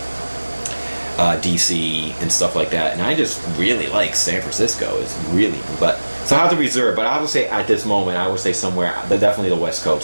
DC and stuff like that, and I just really like San Francisco. It's really, but so I have to reserve. But I would say at this moment, I would say somewhere, definitely the West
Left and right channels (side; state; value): both; inverted; correlation -1.00